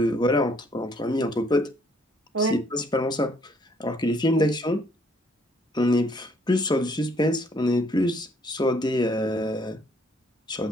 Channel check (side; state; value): both; normal; correlation 0.65